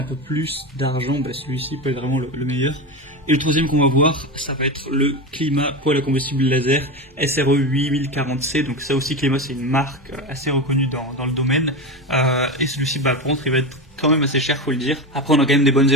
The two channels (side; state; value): both; normal; correlation 0.20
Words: peu plus d'argent, celui-ci peut être vraiment le meilleur. Et le troisième qu'on va voir, ça va être le Clima poêle à combustible laser SRE 8040C. Donc ça aussi, Clima, c'est une marque assez reconnue dans le domaine. Et celui-ci, par contre, il va être quand même assez cher, faut le dire. Après, on a quand même des bonnes